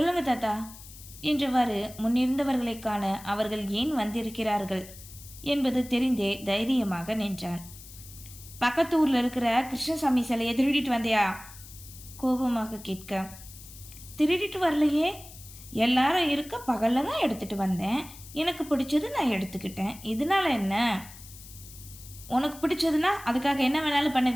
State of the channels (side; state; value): left; noise; hiss, 17 dB below the sound